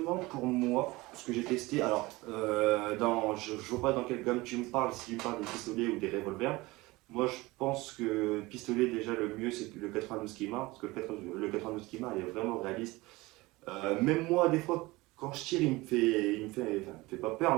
pour moi, ce que j'ai testé, alors, je ne vois pas dans quelle gamme tu me parles, si tu me parles des pistolets ou des revolvers. Moi, je pense que pistolet, déjà, le mieux, c'est le 92 Kima, parce que le 92 Kima, il est vraiment réaliste. Même moi, des fois, quand je tire, enfin, il me fait pas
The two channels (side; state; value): left; quieter; 21.3 dB